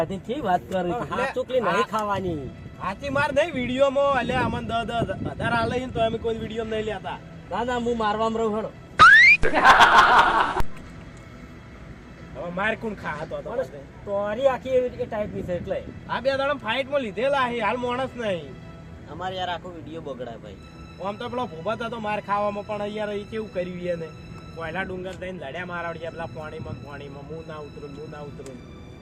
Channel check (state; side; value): identical; both; correlation 1.00